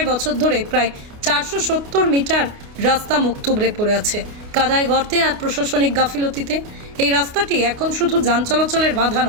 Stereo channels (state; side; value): late; left; 29 ms